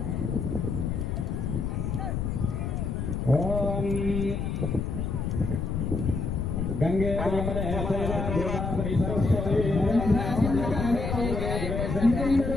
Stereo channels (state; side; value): noise; left; rumble, 2 dB below the sound